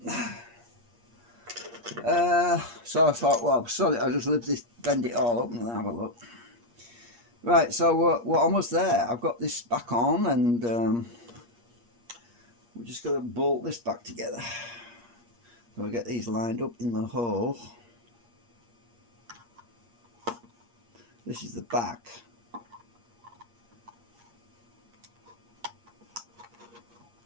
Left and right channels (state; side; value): late; left; 8.5 ms